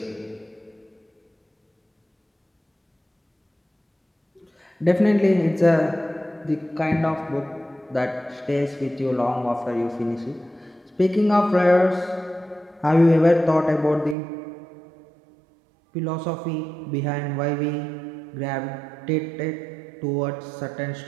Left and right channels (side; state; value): left; drops out; at 14.2 s